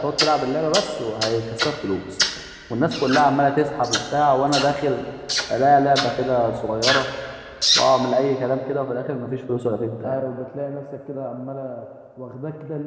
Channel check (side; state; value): both; identical; correlation 1.00